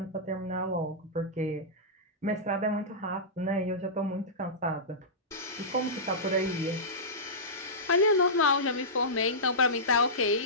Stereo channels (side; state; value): both; normal; correlation -0.16